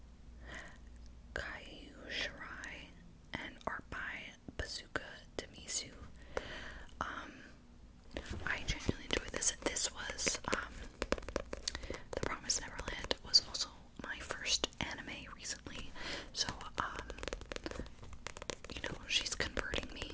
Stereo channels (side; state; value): both; identical; correlation 1.00